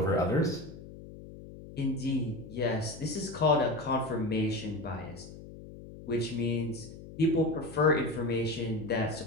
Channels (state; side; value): noise; left; hum, 15 dB below the sound